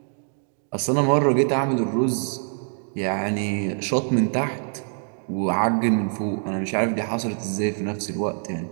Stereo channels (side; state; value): left; silent; 56 dB below the other